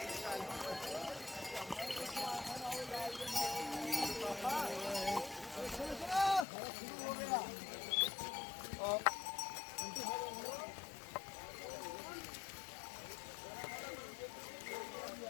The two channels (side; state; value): right; drops out; at 6.5 s